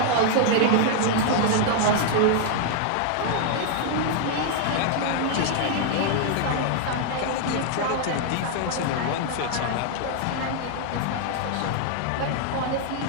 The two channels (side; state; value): both; different; correlation 0.00